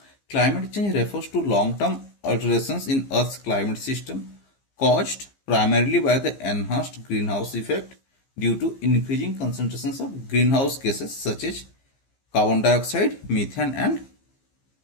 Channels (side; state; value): right; late; 15 ms